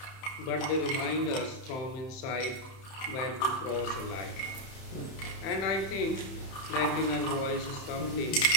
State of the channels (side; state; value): right; late; 31 ms